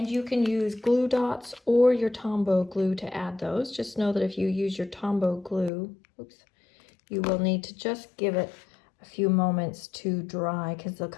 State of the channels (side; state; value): right; drops out; at 5.7 s